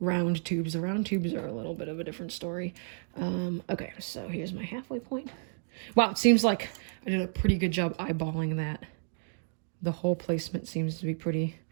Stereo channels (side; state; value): left; silent; 57 dB below the other